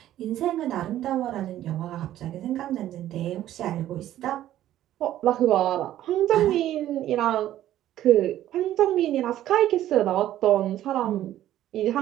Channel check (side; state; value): left; quieter; 12.9 dB